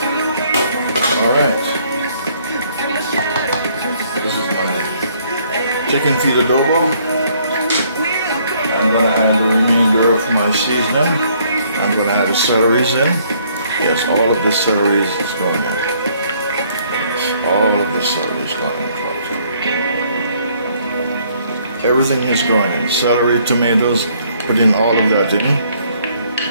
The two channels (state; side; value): inverted; both; correlation -0.65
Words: Alright. Chicken feet adobo. I'm going to add the remainder of my seasoning. I'm going to add the celeries in. Yes, all of the celeries is going in. Yes, all of the celery is going in. Everything is going in. Celery, tomatoes, put in all of that in.